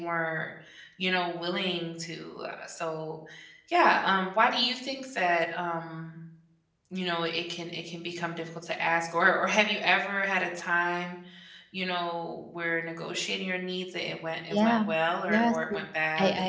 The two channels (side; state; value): both; identical; correlation 1.00